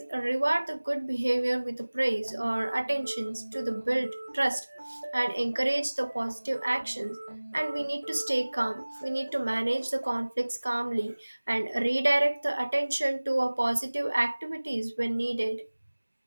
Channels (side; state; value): both; inverted; correlation -1.00